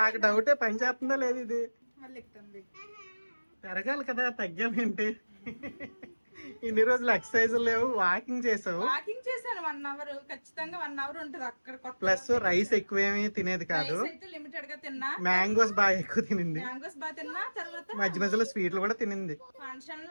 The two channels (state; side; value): inverted; both; correlation -1.00